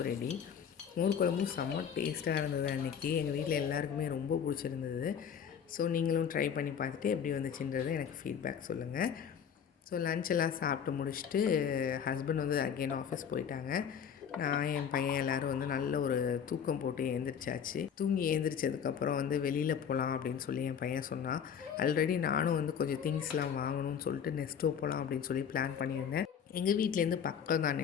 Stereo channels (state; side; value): quieter; right; 7.8 dB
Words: ரெடி. மோர் குழம்பும் செம்ம டேஸ்ட்டாக இருந்தது அன்றைக்கி. எங்கள் வீட்டில் எல்லாருக்குமே ரொம்ப பிடிச்சிருந்தது. ஸோ நீங்களும் ட்ரை பண்ணி பார்த்துட்டு எப்படி வந்துச்சுன்றது எனக்கு ஃபீட்பேக் சொல்லுங்கள். ஸோ லஞ்செல்லாம் சாப்பிட்டு முடிச்சுட்டு ஹஸ்பண்ட் வந்து அகெயின் ஆஃபீஸ் போயிட்டாங்க. நான் என் பையன் எல்லோரும் வந்து நல்ல ஒரு தூக்கம் போட்டு எழுந்திரிச்சாச்சு. தூங்கி எழுந்திரிச்சதுக்கப்புறம் வந்து வெளியில் போகலாம் அப்படின்னு சொல்லி என் பையன் சொன்னான். ஆல்ரெடி நானும் வந்து கொஞ்சம் திங்ஸ்லாம் வாங்கணும்னு சொல்லிட்டு நெஸ்டோ போகலாம் அப்படின்னு சொல்லி பிளான் பண்ணியிருந்தேன். எங்கள் வீட்டிலேருந்து பக்கம் தான்